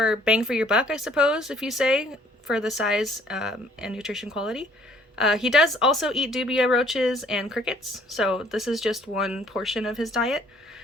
bang for your buck, I suppose, if you say, for the size and nutrition quality. He does also eat dubia roaches and crickets, so this is just one portion of his diet.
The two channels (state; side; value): normal; both; correlation 0.60